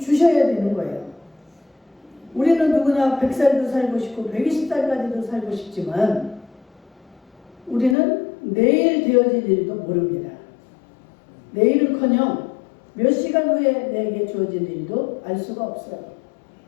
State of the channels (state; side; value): drops out; right; at 8.0 s